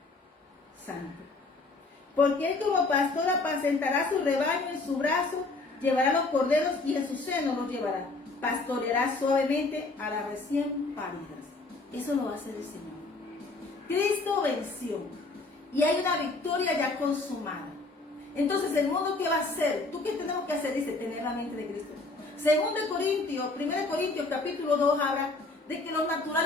Santo. Porque Él como pastor apacentará su rebaño en su brazo, llevará los corderos y en su seno los llevará. Pastoreará suavemente a las recién paridas. Eso lo hace el Señor. Cristo venció y hay una victoria ya consumada. Entonces, ¿el mundo qué va a hacer? ¿Tú qué tenemos que hacer? Dice, tener la mente de Cristo. 1 Corintios capítulo 2 habla de que los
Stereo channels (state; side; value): quieter; right; 3.4 dB